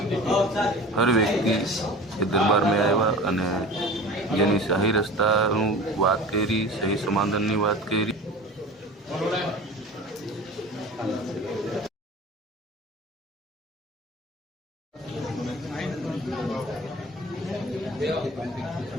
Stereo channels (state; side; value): normal; both; correlation 0.37